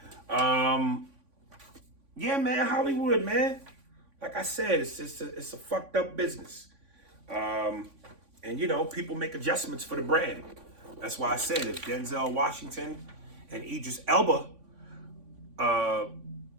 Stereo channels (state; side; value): late; left; 3.5 ms